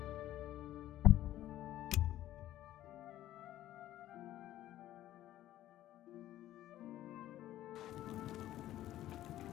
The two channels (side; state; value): right; quieter; 13.5 dB